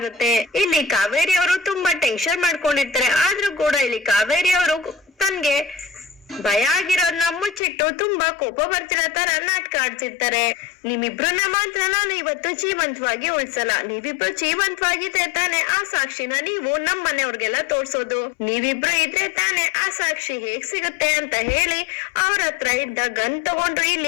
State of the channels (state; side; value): drops out; right; at 7.6 s